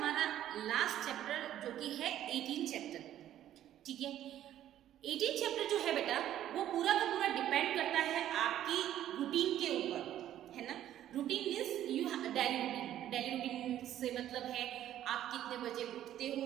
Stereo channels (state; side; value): quieter; left; 11.9 dB